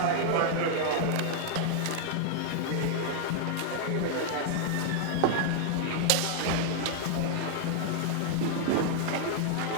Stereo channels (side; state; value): both; different; correlation 0.00